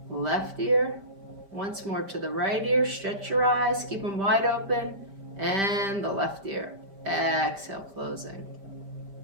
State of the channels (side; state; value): left; late; 5.1 ms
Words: left ear. Once more to the right ear. Stretch your eyes, keep them wide open. And the left ear. Exhale, closing.